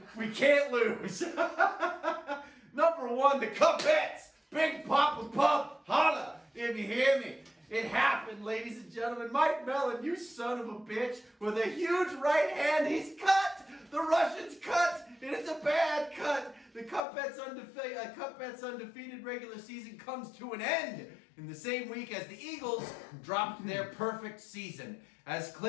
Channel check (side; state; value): right; drops out; at 17.0 s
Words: we can't lose. Number one, the Kuppets. Big Papa Pup, holla, if you hear me. It happened, ladies and gentlemen. Mike Mellon, you son of a bitch, with a huge right hand, he's cut. The Russian's cut, and it's a bad cut. The Kuppets undefeated regular season comes to an end in the same week as the Eagles dropped their perfect season. As